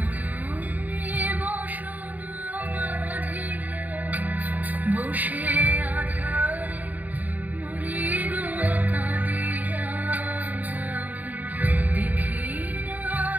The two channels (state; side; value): late; left; 0.080 ms